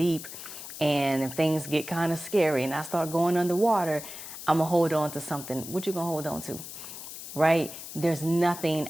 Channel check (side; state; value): left; noise; hiss, 11 dB below the sound